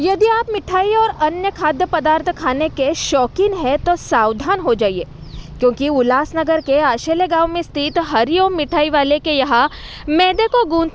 यदि आप मिठाई और अन्य खाद्य पदार्थ खाने के शौकीन हैं तो सावधान हो जाइए, क्योंकि उल्लासनगर के आशेले गांव में स्थित हरिओम मिठाई वाले के यहाँ मैदे को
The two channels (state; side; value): identical; both; correlation 1.00